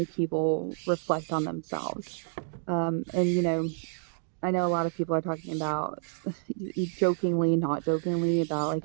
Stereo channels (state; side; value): silent; left; digital silence